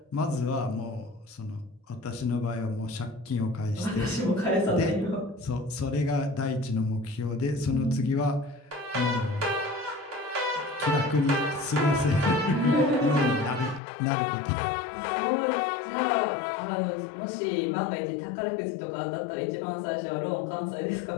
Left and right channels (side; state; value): right; drops out; at 13.8 s